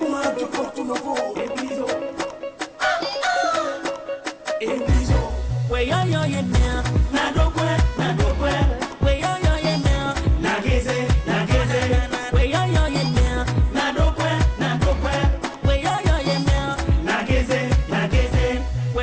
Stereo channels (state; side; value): identical; both; correlation 1.00